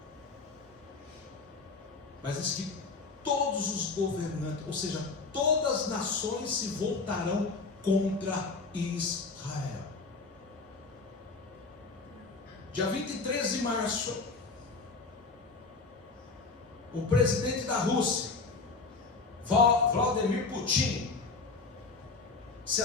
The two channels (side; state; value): right; quieter; 4.1 dB